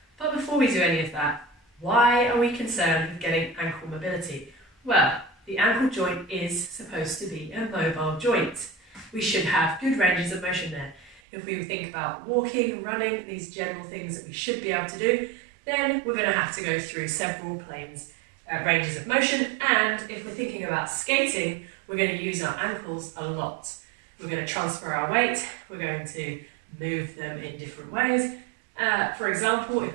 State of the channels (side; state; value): left; drops out; at 11.2 s